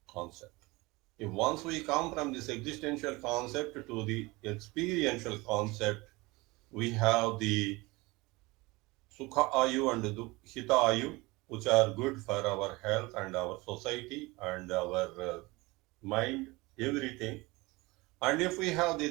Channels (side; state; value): left; quieter; 22.9 dB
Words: concept. If once we come from this existential concept to the experiential concept, we have the Sukha Ayu and Hita Ayu, which are good for our health and our society and our mind, everything. And if we have the